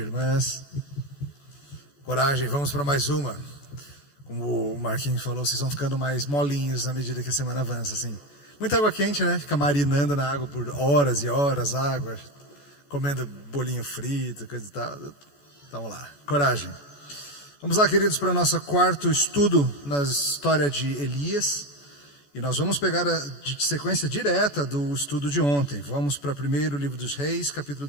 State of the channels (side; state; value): right; late; 14 ms